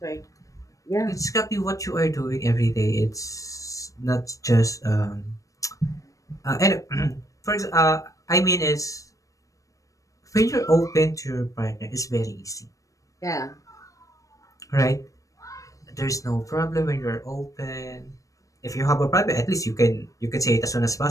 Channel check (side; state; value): right; late; 0.16 ms